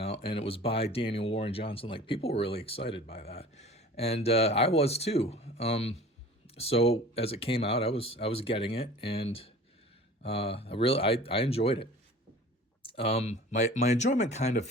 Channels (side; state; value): both; normal; correlation 0.43